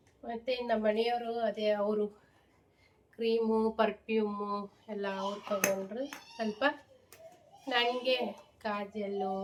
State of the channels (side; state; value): both; identical; correlation 1.00